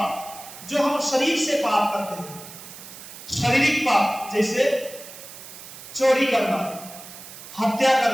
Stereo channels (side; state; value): right; noise; hiss, 15 dB below the sound